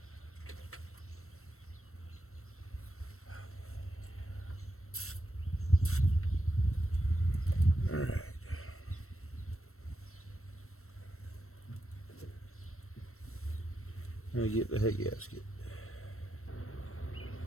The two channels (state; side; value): late; right; 0.63 ms